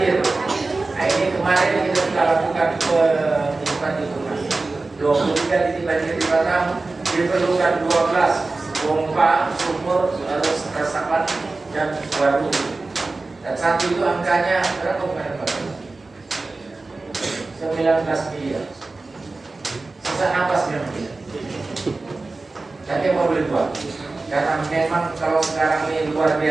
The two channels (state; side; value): quieter; left; 3.5 dB